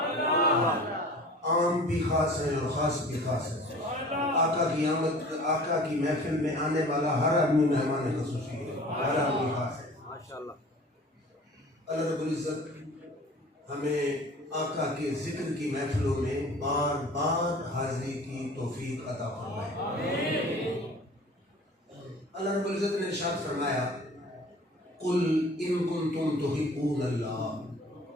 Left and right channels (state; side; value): normal; both; correlation 0.44